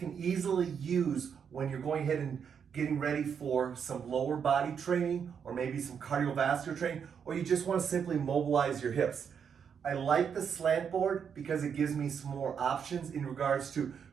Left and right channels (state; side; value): quieter; left; 7.2 dB